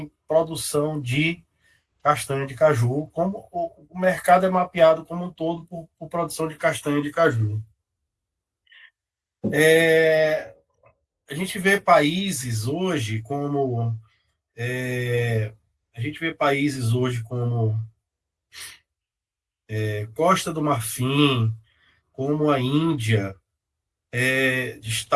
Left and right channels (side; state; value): both; identical; correlation 1.00